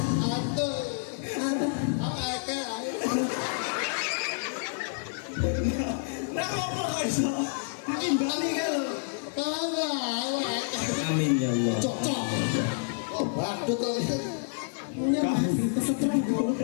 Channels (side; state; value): right; silent; 58 dB below the other